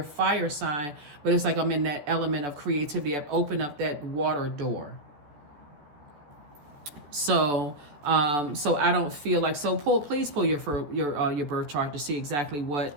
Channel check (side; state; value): left; late; 14 ms